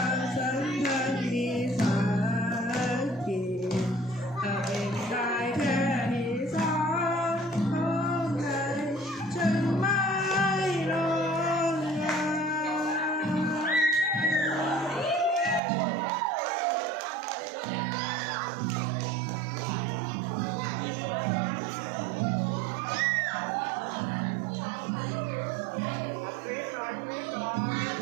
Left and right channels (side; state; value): left; drops out; at 15.6 s